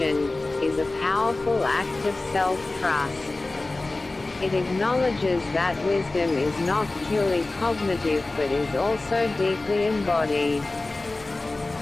is a powerful act of self-trust. It acknowledges that wisdom is not purely cognitive but is also deeply embodied.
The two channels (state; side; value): quieter; right; 3.1 dB